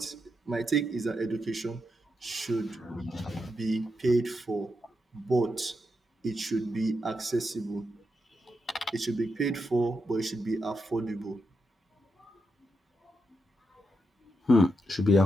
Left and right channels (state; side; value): normal; both; correlation 0.84